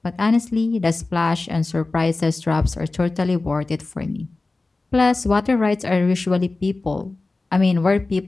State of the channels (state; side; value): quieter; right; 3.4 dB